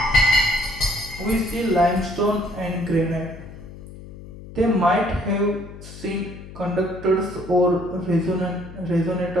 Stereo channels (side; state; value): left; noise; hum, 15 dB below the sound